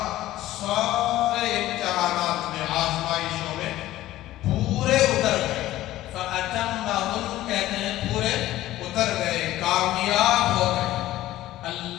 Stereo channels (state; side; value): quieter; right; 15.2 dB